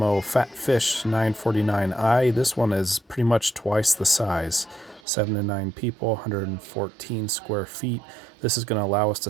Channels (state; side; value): drops out; left; at 5.0 s